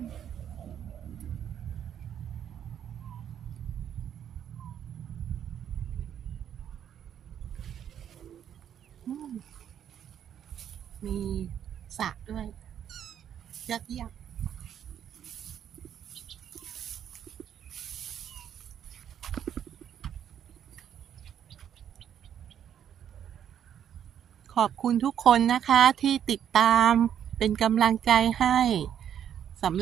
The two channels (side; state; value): left; quieter; 9.4 dB